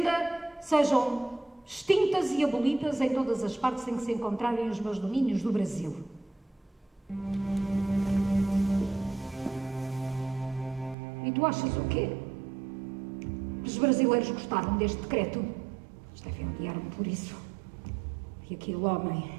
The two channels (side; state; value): left; drops out; at 11.0 s